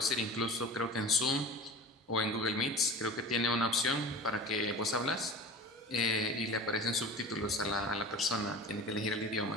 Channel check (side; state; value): both; normal; correlation 0.36